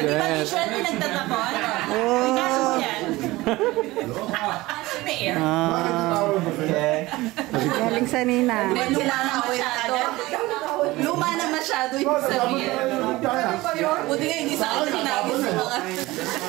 Di ba shit. t-shirt yung nagtatapon? Oh. Ikaso mo yan? May air. Galing sa ninang. Luma na masyado. Luma na masyado yung sabihin. Buti nga hindi sa akin hinagis sa mga...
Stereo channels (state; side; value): quieter; left; 19.6 dB